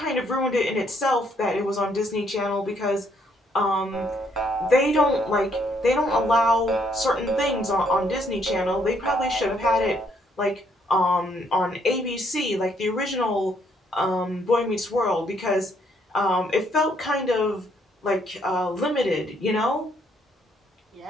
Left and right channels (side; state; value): both; normal; correlation 0.69